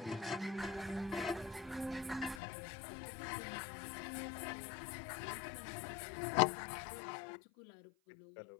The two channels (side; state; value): right; drops out; at 2.4 s